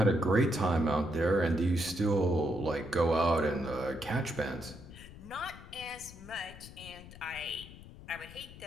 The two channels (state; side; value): noise; left; rumble, 16 dB below the sound